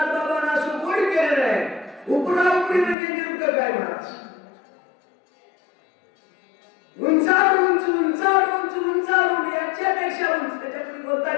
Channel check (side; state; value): right; drops out; at 3.0 s